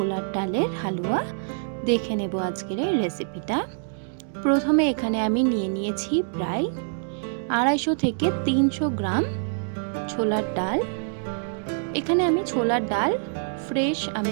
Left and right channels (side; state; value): left; silent; digital silence